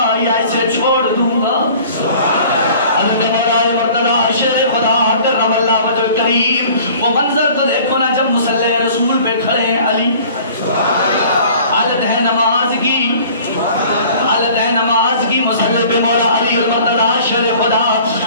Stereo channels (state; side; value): inverted; both; correlation -0.49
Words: یا اسے چھوڑ دوں گا۔ حضرت مولا مرتضی شیر خدا کرم اللہ وجہ الکریم، وہ منظر تو دیکھو نا جب مصلی رسول پہ کھڑے ہیں علی، حالت ہے نماز کی، حالت ہے نماز کی، مصلی پہ مولا علی المرتضی شیر خدا